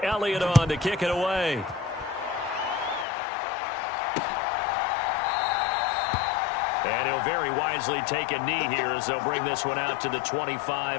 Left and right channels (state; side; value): drops out; right; at 3.1 s